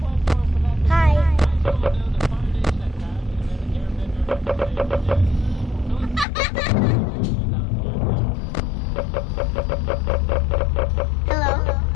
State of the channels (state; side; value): drops out; right; at 6.2 s